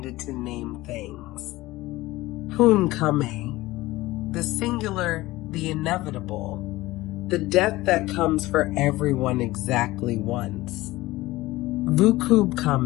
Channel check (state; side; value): quieter; right; 18.6 dB